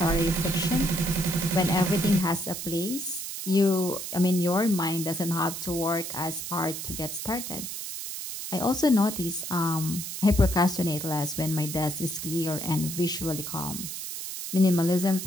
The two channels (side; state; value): right; noise; hiss, 7 dB below the sound